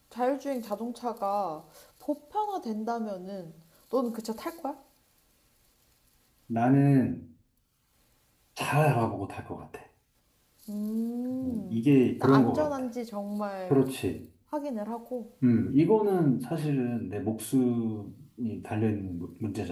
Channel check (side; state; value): both; identical; correlation 1.00